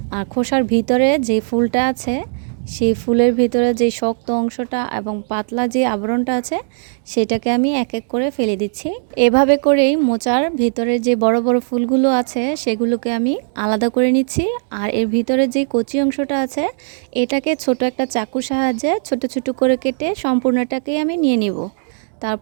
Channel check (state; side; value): silent; left; 67 dB below the other